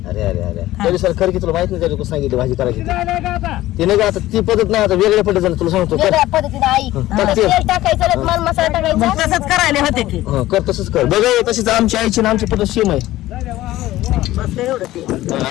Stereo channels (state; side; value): quieter; right; 15.8 dB